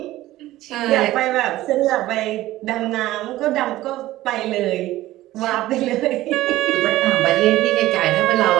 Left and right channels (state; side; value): quieter; left; 16.0 dB